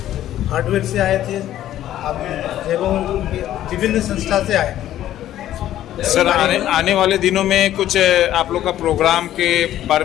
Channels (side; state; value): right; quieter; 12.6 dB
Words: हार्डवेयर से आए थे, आपके विभिन्न संस्था से आए थे। सर आने वाले दिनों में कुछ आप लोग का प्रोग्राम के बारे